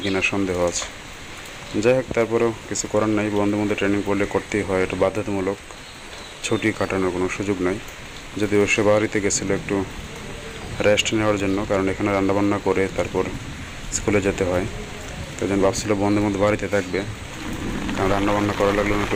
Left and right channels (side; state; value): both; identical; correlation 1.00